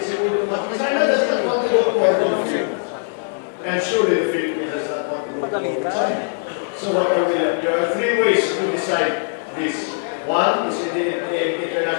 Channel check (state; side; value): silent; right; digital silence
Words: siguro na China does not want to go to the Philippines. And surely the Philippines does not want to go to China. So what are we left? There are three ways to decide this. One is in the